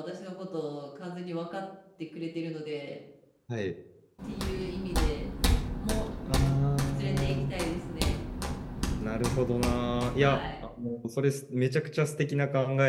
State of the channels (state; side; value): identical; both; correlation 1.00